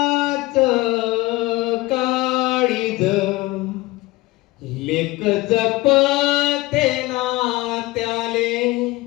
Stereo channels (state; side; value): quieter; right; 20.2 dB